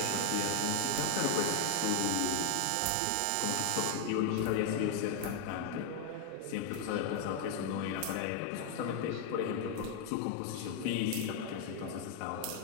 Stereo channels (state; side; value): different; both; correlation 0.00